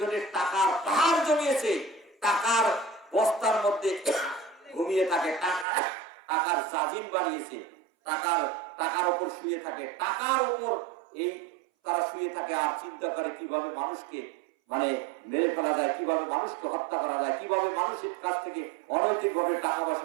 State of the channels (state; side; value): drops out; left; at 5.7 s